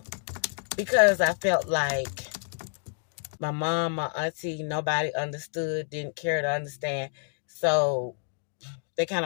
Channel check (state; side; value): silent; right; 56 dB below the other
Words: because I felt like my mom, my auntie, nobody understood, didn't care to understand. So they kind